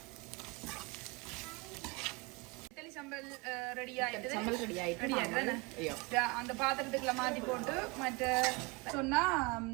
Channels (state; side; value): quieter; left; 26.5 dB